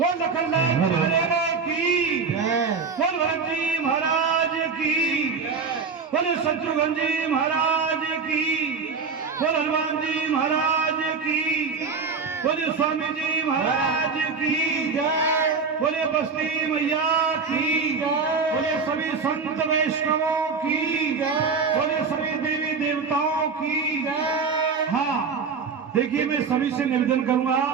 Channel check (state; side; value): quieter; left; 5.2 dB